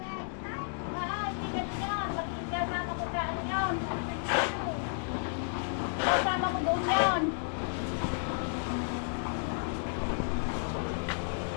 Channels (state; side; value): silent; right; digital silence